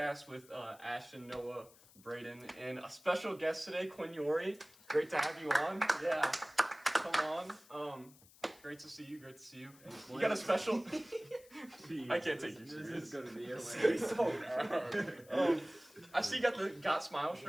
with Ashton, Noah, Braden, and a special guest today, Quinn, Yori. Great to have you on. Yeah. Come on. Great to see you. Great to see you. You got a special. I can't take you serious. This is gonna be hilarious. So bad. I see you got the Got Smile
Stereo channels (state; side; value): noise; left; hiss, 24 dB below the sound